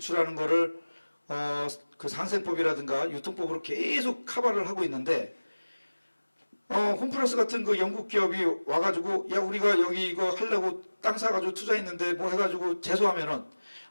거를 그 상생법이라든가 유통법으로 계속 커버를 하고 있는데 홈플러스 같은 그 영국 기업이 와가지고 야 우리가 여기 이거 하려고 땅 사가지고 투자했는데 뭐 해가지고 제소하면은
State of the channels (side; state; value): both; inverted; correlation -1.00